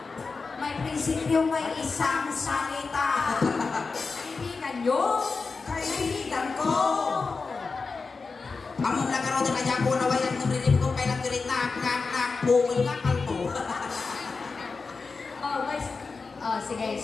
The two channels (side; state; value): right; quieter; 4.4 dB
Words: May prinsipyo, may isang salita. Kaibigan nyo, kaibigan ko. Among lagaro din kaya ko nawayan ng rinip ko kailang galit na bungol nga kalbo. Sige,